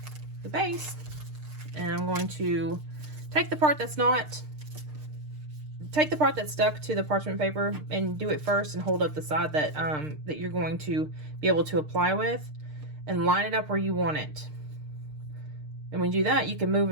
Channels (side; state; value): left; late; 6.6 ms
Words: the base, and I'm going to take the part that's stuck to the parchment paper and do it first, and hold up the side that that you're going to be able to apply with, and line it up where you want it. And when you do that, you can move